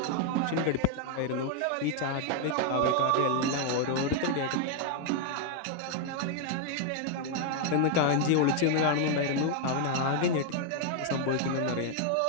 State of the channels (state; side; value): different; both; correlation 0.00